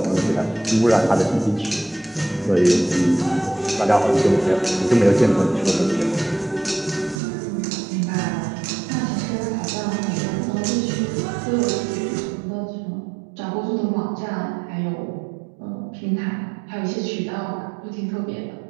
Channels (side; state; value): left; drops out; at 7.2 s